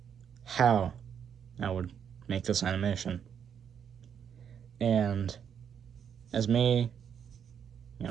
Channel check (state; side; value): quieter; left; 8.0 dB